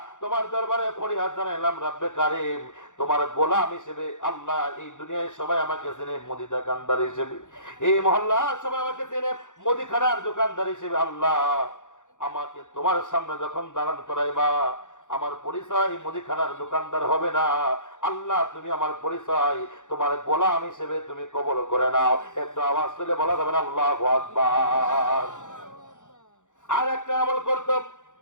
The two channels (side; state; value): right; late; 0.86 ms